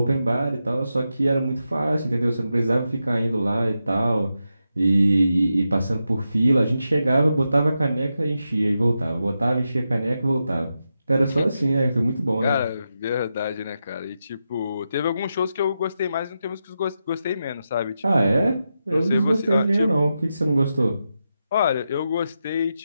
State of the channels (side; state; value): both; inverted; correlation -0.88